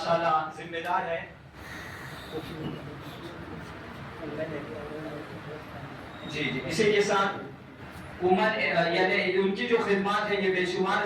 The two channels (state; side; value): identical; both; correlation 1.00